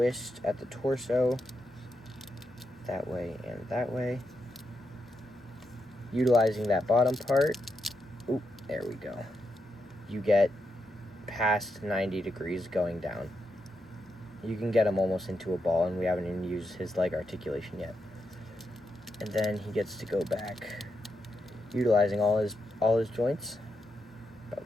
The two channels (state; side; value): normal; both; correlation 0.84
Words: at the torso, that way and that way. Utilizing that bottom part, oop, there we go. You get past 90 degrees going down. You can get him almost into a ball, and we haven't even used his leg articulation yet. And then he gets to go back, utilizing all his joints,